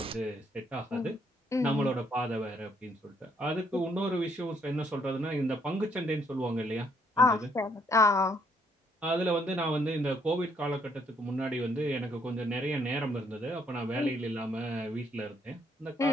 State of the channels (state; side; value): normal; both; correlation 0.70